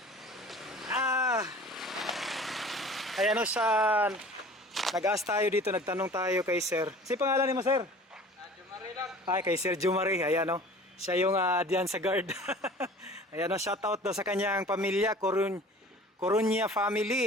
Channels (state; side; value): normal; both; correlation 0.44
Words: Ayan o sa nag-ask tayo dito, nagtanong tayo kay sir. Si pangalan ni mo sir? Jumari lang. Ay, kay Sir Jumari. Ayan o. Siya yung diyan sa guard. Ayan o, shoutout daw sa kanyang pamilya. Coruña